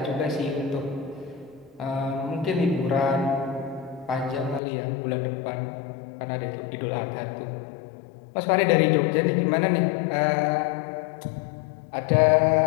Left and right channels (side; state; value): right; drops out; at 4.6 s